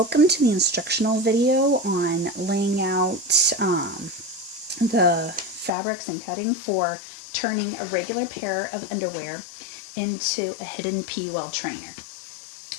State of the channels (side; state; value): right; drops out; at 5.7 s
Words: to the instructional video on laying out the fabrics and cutting for turning a regular pair of underwear into a hidden PUL trainer.